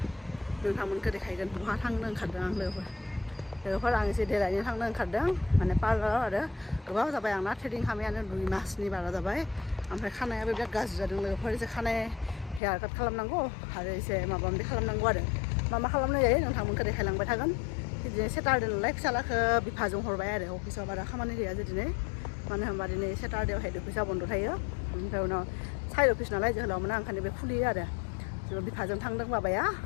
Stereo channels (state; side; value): drops out; right; at 12.6 s